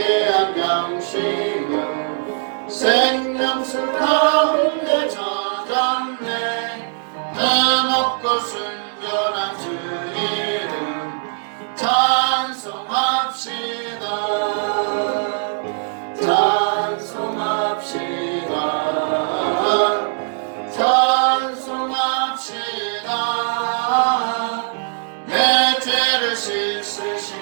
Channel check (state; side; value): silent; left; 65 dB below the other